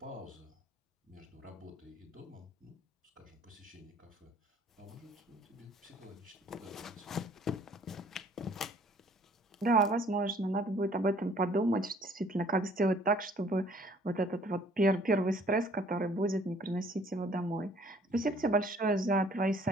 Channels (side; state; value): both; normal; correlation 0.58